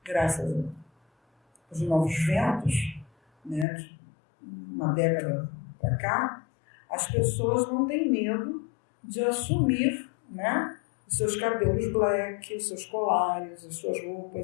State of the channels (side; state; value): right; drops out; at 3.7 s